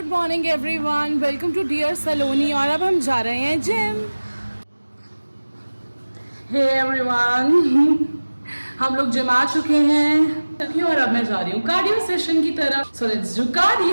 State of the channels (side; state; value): both; inverted; correlation -1.00